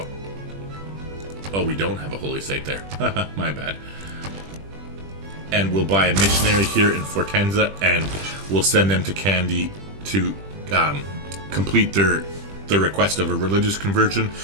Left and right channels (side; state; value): left; late; 20 ms